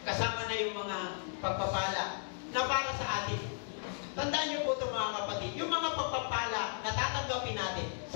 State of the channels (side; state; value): right; silent; digital silence